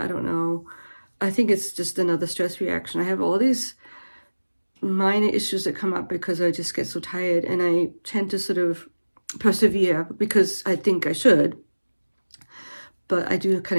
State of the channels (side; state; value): both; inverted; correlation -1.00